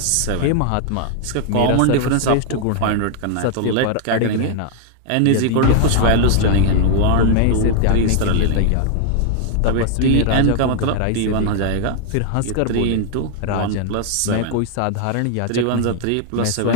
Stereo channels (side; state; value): both; different; correlation 0.00